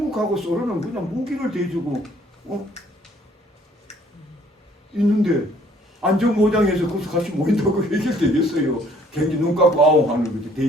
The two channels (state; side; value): normal; both; correlation 0.60